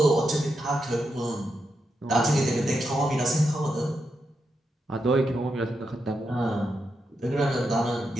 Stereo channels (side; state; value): both; normal; correlation 0.85